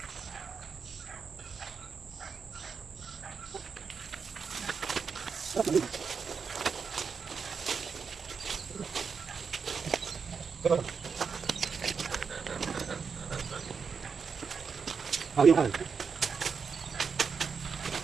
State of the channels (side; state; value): left; quieter; 5.8 dB